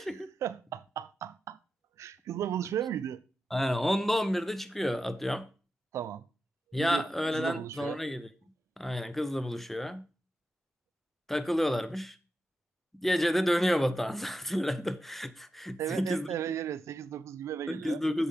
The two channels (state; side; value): normal; both; correlation 0.89